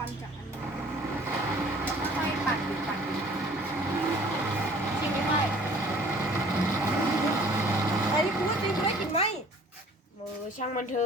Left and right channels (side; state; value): both; normal; correlation 0.52